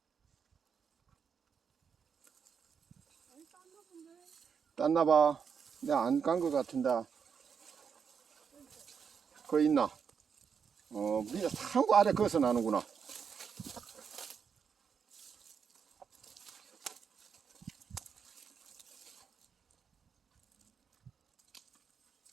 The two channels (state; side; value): quieter; left; 6.7 dB